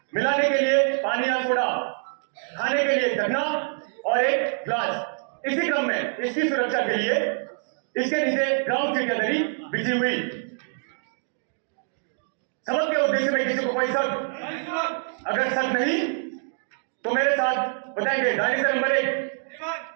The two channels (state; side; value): silent; left; digital silence